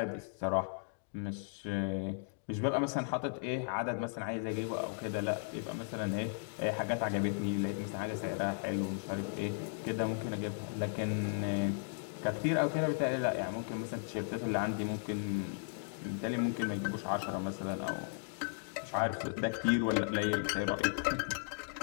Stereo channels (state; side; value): silent; right; digital silence